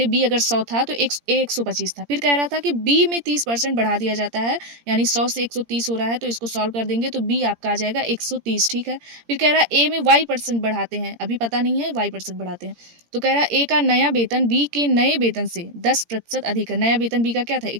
बी अगर 100 था तो ए 125 था। फिर कह रहा था कि बी में 30% बढ़ा दिया जाता है, यानी 100 से 130 हो रहा है, तो इसको सॉल्व कर देंगे तो बी आपका आ जाएगा 130, ठीक है। फिर कह रहा है ए में वाई परसेंट बढ़ाते हैं, अभी पता नहीं है, वाई परसेंट बढ़ाते हैं। तो कह रहा है ए का नया वेतन बी के नए वेतन से 10% अधिक है। नया वेतन बी का क्या था,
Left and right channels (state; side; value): late; left; 17 ms